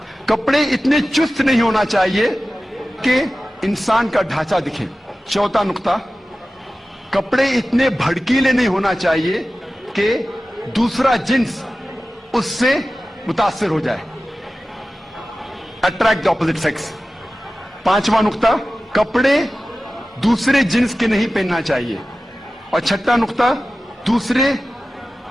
कपड़े इतने चुस्त नहीं होना चाहिए कि इंसान का ढांचा दिखे। चौथा नुक्ता, कपड़े इतने भड़कीले नहीं होना चाहिए कि दूसरा जिन्स उससे मुतासिर हो जाए, अट्रैक्ट द ऑपोजिट सेक्स। पांचवा नुक्ता, कपड़े दूसरे जिन्स के नहीं पहनना चाहिए। और छठा नुक्ता, दूसरे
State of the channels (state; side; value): normal; both; correlation 0.95